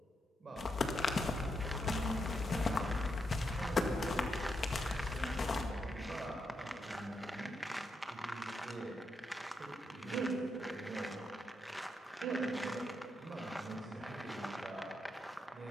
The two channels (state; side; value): normal; both; correlation 0.82